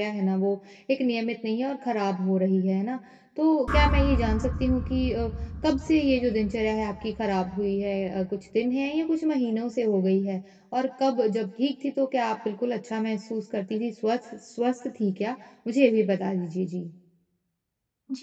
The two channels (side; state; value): both; identical; correlation 1.00